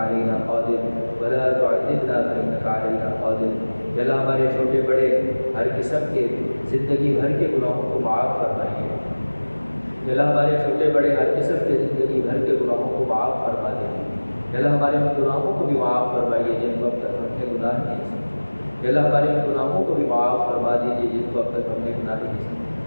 علينا قادر، ولا تعذبنا فإنك علينا قادر. یا اللہ ہمارے چھوٹے بڑے ہر قسم کے زندگی بھر کے گناہوں کو معاف فرمائیے. یا اللہ ہمارے چھوٹے بڑے ہر قسم کے زندگی بھر کے گناہوں کو معاف فرما دیجیے. یا اللہ ہمارے گناہوں کو بھی معاف فرمائیے جن کو اب تک ہم نے گناہ نہیں سمجھے. یا اللہ ہمارے گناہوں کو بھی معاف فرما دیجیے جن کو اب تک ہم نے گناہ نہیں سمجھے.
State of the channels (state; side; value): inverted; both; correlation -1.00